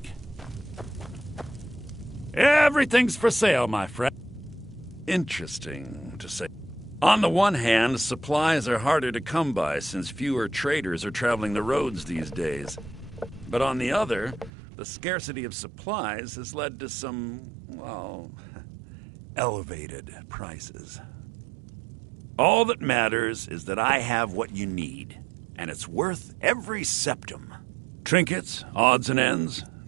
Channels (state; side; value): drops out; left; at 14.5 s